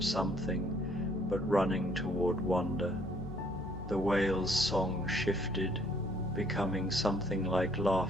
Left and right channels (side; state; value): left; noise; hum, 10 dB below the sound